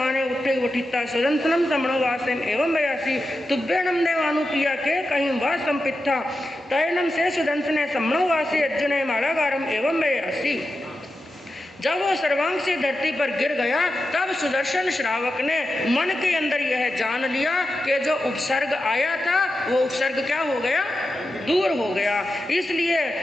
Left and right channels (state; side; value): normal; both; correlation 0.90